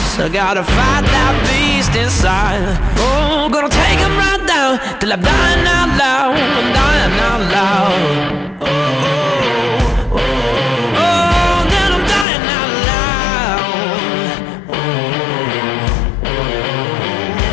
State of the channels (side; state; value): right; drops out; at 12.2 s